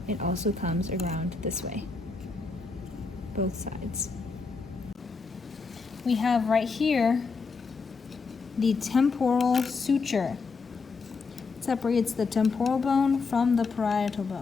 It also comes around this way, both sides. We have right here the temporal suture. It separates the temporal bone from the parietal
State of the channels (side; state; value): right; quieter; 4.5 dB